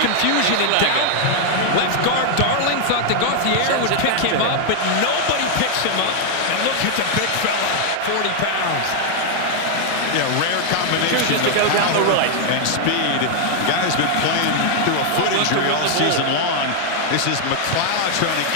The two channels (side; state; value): both; different; correlation 0.00